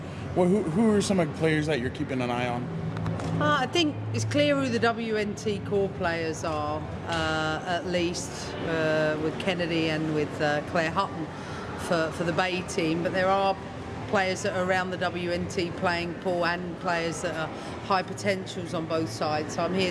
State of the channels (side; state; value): both; identical; correlation 1.00